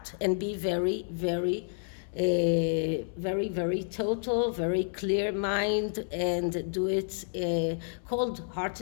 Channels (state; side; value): silent; right; 58 dB below the other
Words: and be very, very very, very total, very clear mind, and do it